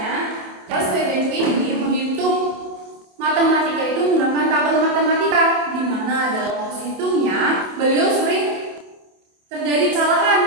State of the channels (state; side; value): late; left; 27 ms